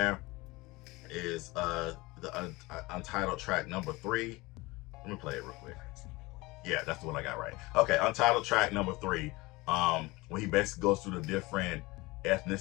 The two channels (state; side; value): quieter; right; 22.4 dB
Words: is the Untitled track number 3. Let me play it real quick. Yeah, that's the one I got right. Okay, Untitled track number 3. When he basically goes through the different